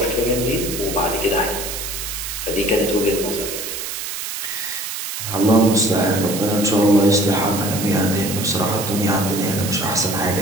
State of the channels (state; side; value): noise; right; hiss, 6 dB below the sound